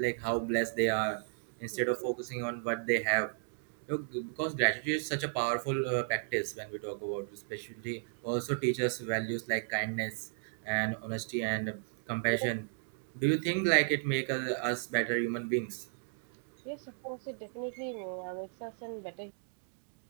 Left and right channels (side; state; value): left; silent; digital silence